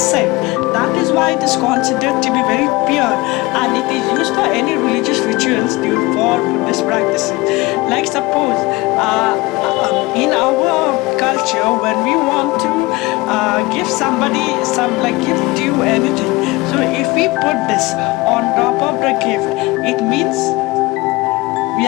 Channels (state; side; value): quieter; right; 21.9 dB